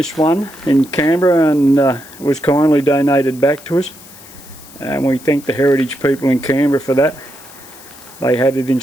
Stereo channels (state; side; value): noise; left; hiss, 20 dB below the sound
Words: one in Canberra and it was kindly donated back to us. And we thank the heritage people in Canberra for that. They had it in